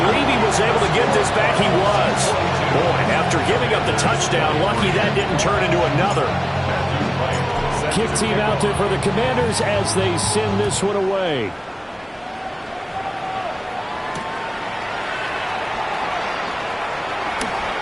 he was able to get this back. He was. Boy, after giving up the touchdown, lucky that didn't turn into another. Kick team out there for the Commanders as they send this one away.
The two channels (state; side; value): identical; both; correlation 1.00